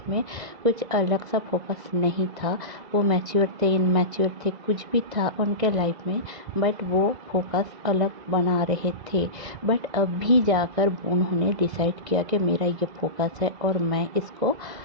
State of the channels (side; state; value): left; late; 2.0 ms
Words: में कुछ अलग सा फोकस नहीं था। वो मैच्योर थे, इनमैच्योर थे, कुछ भी था उनके लाइफ में, बट वो फोकस अलग बना रहे थे। बट अभी जाकर उन्होंने डिसाइड किया कि मेरा ये फोकस है और मैं इसको